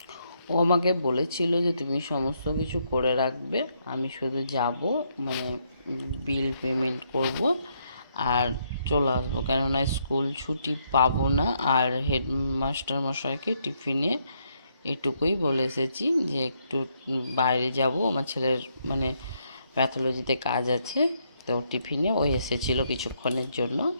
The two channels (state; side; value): inverted; both; correlation -0.75